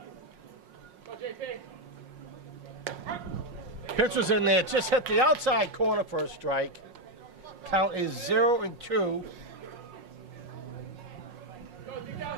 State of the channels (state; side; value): late; left; 5.5 ms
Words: Go, JP. Pitcher's in there, just hit the outside corner for a strike. Count is 0-2. Go, deep